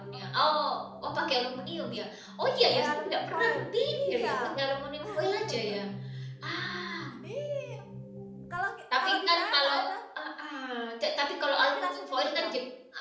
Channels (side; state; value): both; identical; correlation 1.00